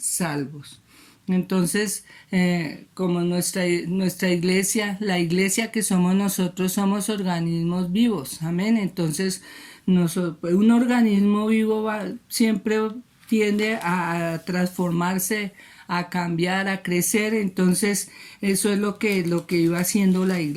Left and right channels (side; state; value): both; identical; correlation 1.00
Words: Entonces, como nuestra iglesia, la iglesia que somos nosotros, somos organismos vivos, amén. Entonces, un organismo vivo siempre tiende a transformarse, a cambiar, a crecer. Entonces eso es lo que iba haciendo la